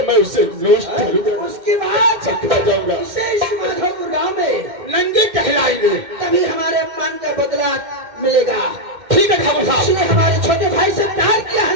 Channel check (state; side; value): late; left; 2.1 ms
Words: मैं उसे नोस्ट करूंगा, उसके बाद चकरा जाऊंगा। इसे इस माधोपुर गांव में नंगे कहलाएंगे। तभी हमारे अपमान का बदला मिलेगा। ठीक है ठाकुर साहब। इसने हमारे छोटे भाई से प्यार किया है